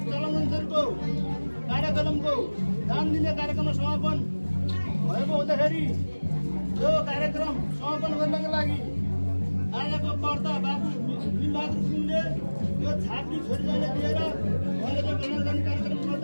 चलन अनुसारको कार्यक्रमको दान दिने कार्यक्रममा समापन भएको हुँदाखेरि यो कार्यक्रम समापन गर्नको लागि आजको कर्ता बाबु बिलबहादुर गुरुङले यो छात्री छोरीलाई दिएर उहाँले जो कल्याण गर्ने कार्यक्रम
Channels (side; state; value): both; inverted; correlation -1.00